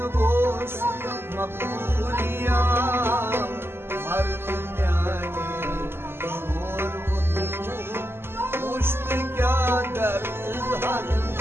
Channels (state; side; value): late; left; 0.11 ms